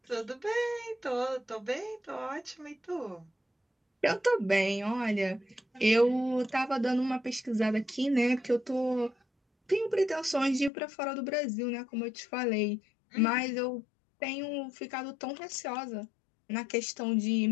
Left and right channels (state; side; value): drops out; right; at 10.7 s